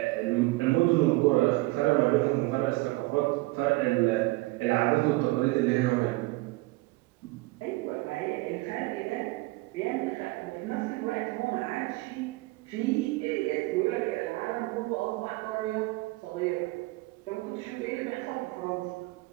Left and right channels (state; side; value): quieter; left; 22.2 dB